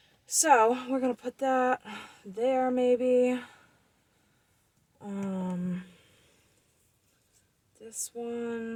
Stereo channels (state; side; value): identical; both; correlation 1.00